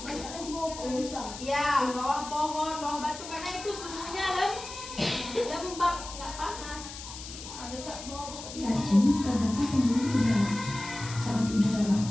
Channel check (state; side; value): noise; left; hiss, 12 dB below the sound